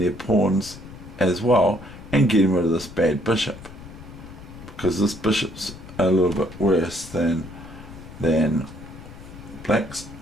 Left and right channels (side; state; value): left; noise; rumble, 16 dB below the sound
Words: pawns as well, and getting rid of this bad bishop, because this bishop's a little bit worse than black's